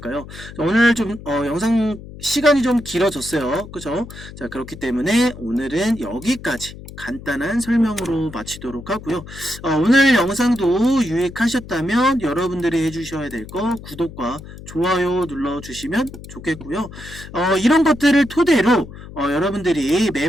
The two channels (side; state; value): left; noise; hum, 15 dB below the sound